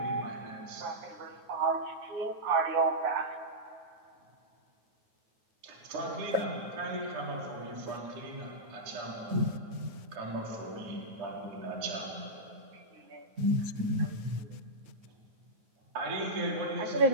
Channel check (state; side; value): late; left; 9.3 ms